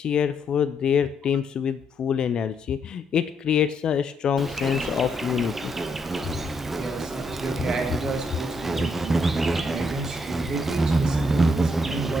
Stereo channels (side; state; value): both; normal; correlation 0.75